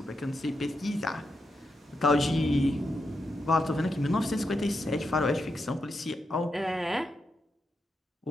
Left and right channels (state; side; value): normal; both; correlation 0.85